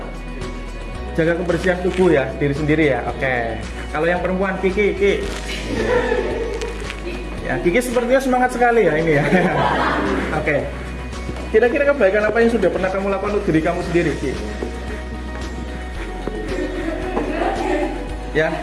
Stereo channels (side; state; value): both; identical; correlation 1.00